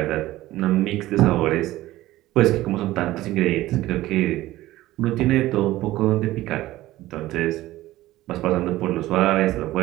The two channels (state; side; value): quieter; left; 16.3 dB